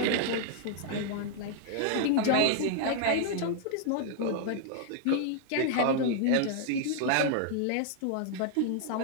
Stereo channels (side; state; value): both; different; correlation 0.00